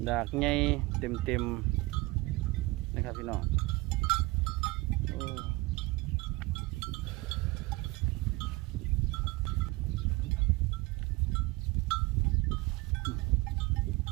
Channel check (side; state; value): left; quieter; 22.3 dB